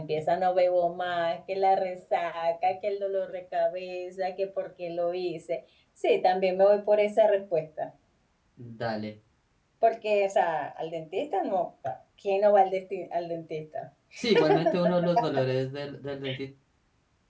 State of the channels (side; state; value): both; identical; correlation 1.00